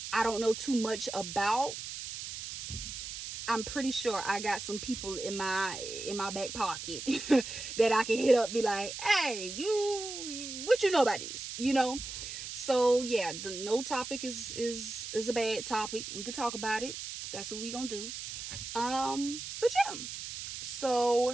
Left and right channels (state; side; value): noise; right; hiss, 8 dB below the sound